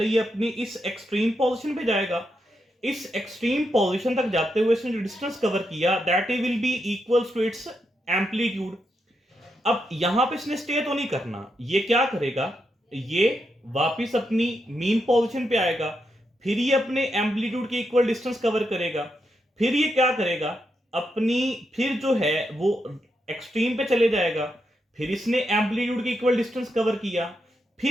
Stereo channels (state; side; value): normal; both; correlation 0.83